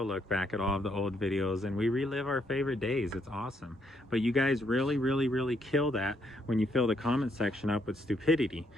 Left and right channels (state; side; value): normal; both; correlation 0.73